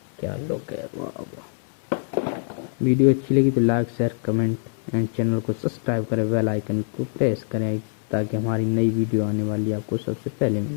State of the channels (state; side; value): silent; right; 62 dB below the other